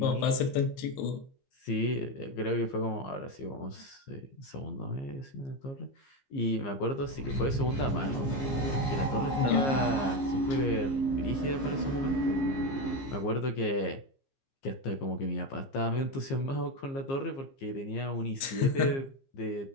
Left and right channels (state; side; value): late; right; 15 ms